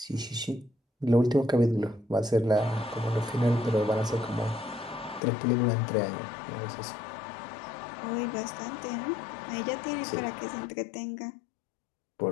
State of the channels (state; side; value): drops out; right; at 5.2 s